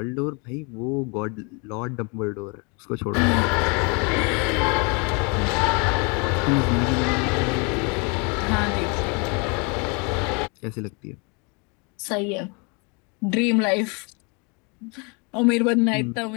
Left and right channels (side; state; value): right; quieter; 32.2 dB